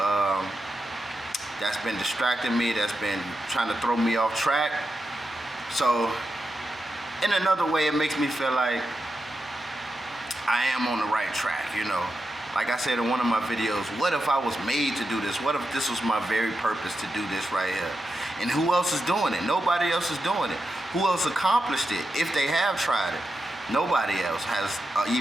that's been distracting me, that's been trying to throw me off track. So in another way, it makes me feel like I am on the right track, Like I said in one of my videos, what if I was made to do this? What if this was my very purpose to do this right here? And who else is doing it? Nobody else is doing it. Who else accomplished it if they have tried it? Nobody else has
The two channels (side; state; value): both; normal; correlation 0.88